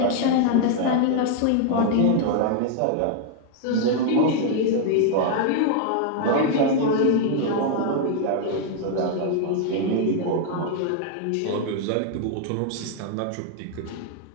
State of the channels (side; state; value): both; different; correlation 0.00